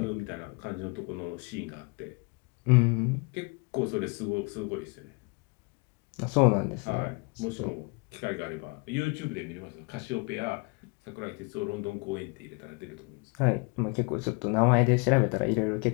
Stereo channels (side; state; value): right; quieter; 31.3 dB